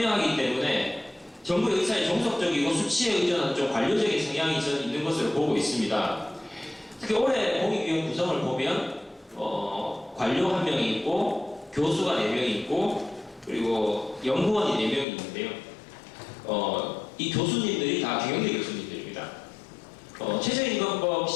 때문에 정부의 의사에 종속적이고 수치에 의존한 좀 관료적인 성향이 있는 것으로 보고 있습니다. 특히 올해 공익위원 구성을 보면 관료 1명이 있고 교수가 4명이 있고 그리고 연구원이 4명이 있는데요. 이 교수님들이 다 경영대 교수님들입니다. 최저임금법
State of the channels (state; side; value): drops out; right; at 15.1 s